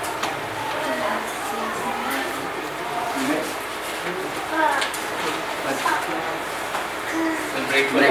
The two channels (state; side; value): noise; right; hum, 25 dB below the sound